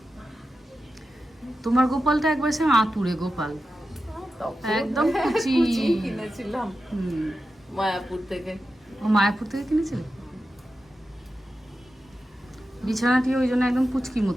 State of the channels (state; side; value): normal; both; correlation 0.91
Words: তোমার গোপালটা একবার সে আতুরে গোপাল, একদম কুচি কিনেছিলাম মায়াপুর থেকে। ও মায়াপুর থেকে কিনেছিলে? বিছানাটি ওই জন্য একদম পুচকি